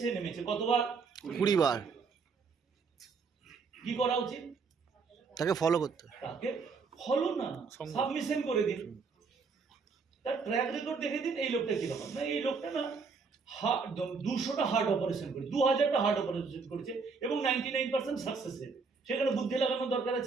নেমেছে কতবার? 20 বার। কি করা উচিত? তাকে ফলো করতে, তাকে ফলো না, সাবমিশন করে দিন, তার ট্র্যাক রেকর্ড দেখে দিন। এই লোকটা কিরকম না, এই লোকটা না 200টা হার্ট অপারেশন করে 2000টা হার্ট অপারেশন করেছে এবং 99% সাকসেস রেট। সেখানে বুদ্ধি লাগানোর দরকার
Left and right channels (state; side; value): quieter; left; 4.9 dB